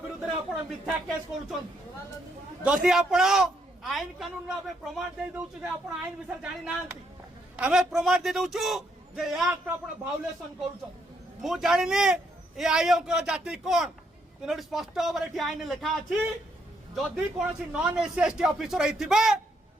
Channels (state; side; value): normal; both; correlation 0.74